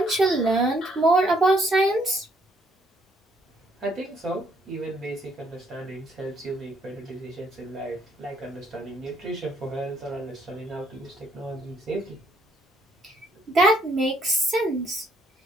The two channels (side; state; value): both; normal; correlation 0.68